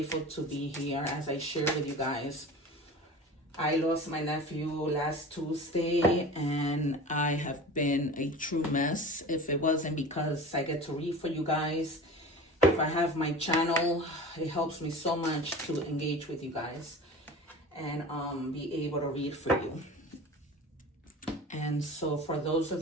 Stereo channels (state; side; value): normal; both; correlation 0.36